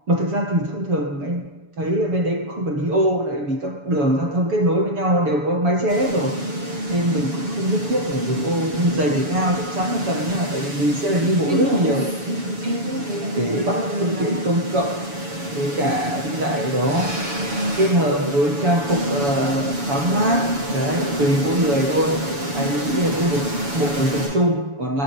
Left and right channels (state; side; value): late; left; 7.0 ms